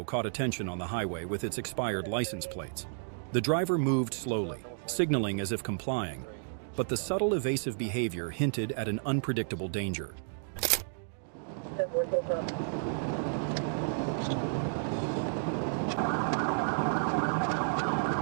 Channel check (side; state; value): left; silent; digital silence